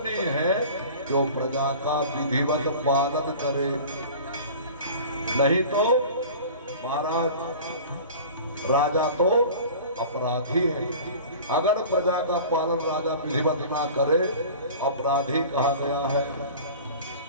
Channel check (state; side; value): inverted; both; correlation -0.40